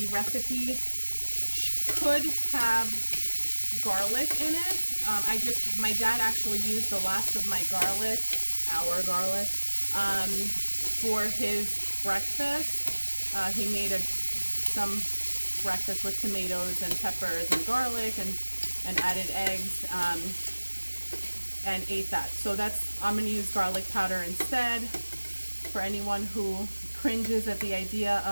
recipe could have garlic in it. My dad actually used the last of my garlic, our garlic, for his breakfast. He made some breakfast with tomatoes and peppers and garlic and added eggs and ate that. So I'm going to use garlic powder instead. For anyone who cringes at the idea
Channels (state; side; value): inverted; both; correlation -1.00